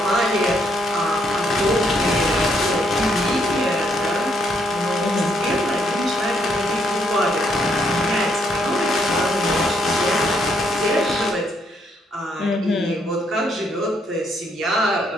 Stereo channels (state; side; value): normal; both; correlation 0.72